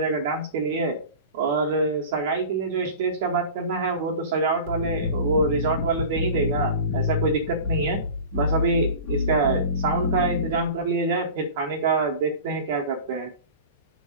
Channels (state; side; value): inverted; both; correlation -0.36